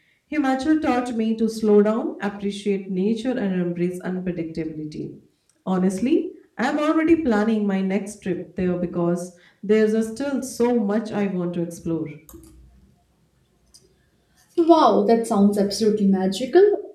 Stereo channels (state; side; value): identical; both; correlation 1.00